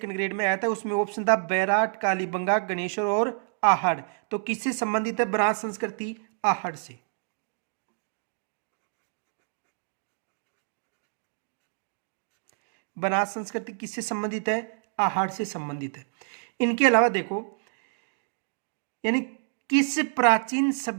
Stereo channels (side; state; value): left; silent; digital silence